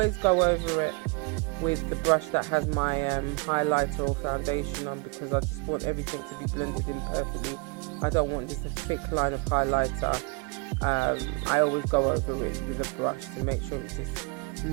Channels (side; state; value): left; quieter; 30.7 dB